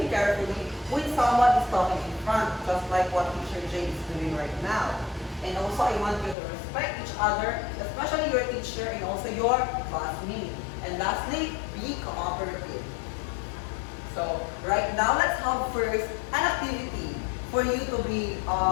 carefully when someone is talking in front, just like what Teacher Jane is doing right now. And also, I want you to respect each other, especially your teacher and also your classmate. And lastly, be cooperative. So, right now, let's have first an activity for you to be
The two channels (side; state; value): right; drops out; at 6.4 s